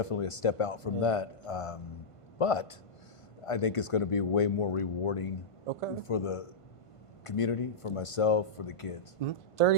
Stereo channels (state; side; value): late; right; 1.5 ms